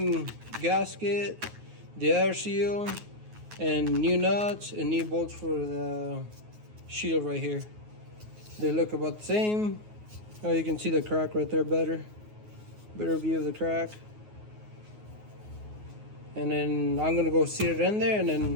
gasket, the air seal, and new nuts and new bolts for the shield right here. They look about the same. Oh, you can see the crack right there better view of the crack. And then I'm gonna go seat it in there and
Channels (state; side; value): late; left; 9.4 ms